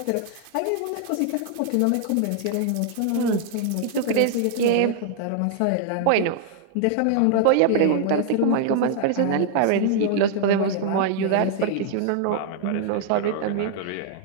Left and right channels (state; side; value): different; both; correlation 0.00